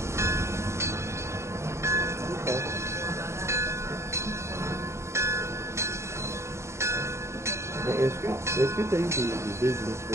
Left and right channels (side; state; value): left; late; 0.13 ms